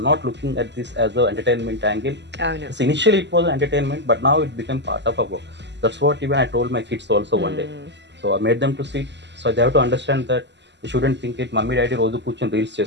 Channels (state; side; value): late; left; 0.51 ms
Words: not looking at this as an entertainment angle. Oh no. So initially it was entertainment, but now it became part of our work. That's what even I told my kids also one day. So I made them to see it. So they have to understand that they shouldn't think it. Mummy, daddy, రోజు కూర్చొని reels